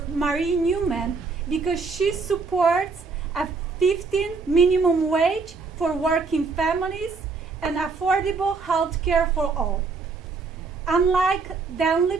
Marie Newman because she supports a 15 minimum wage for working families and affordable health care for all. Unlike Dan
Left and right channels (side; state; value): left; quieter; 4.5 dB